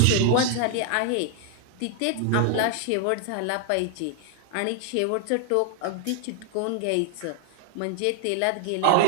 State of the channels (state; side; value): different; both; correlation 0.00